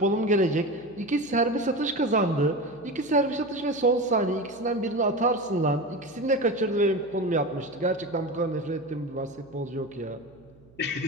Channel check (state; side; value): noise; right; hum, 27 dB below the sound